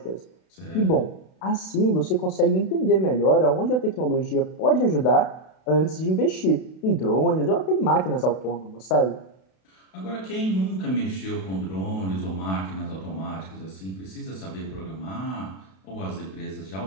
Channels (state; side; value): late; right; 32 ms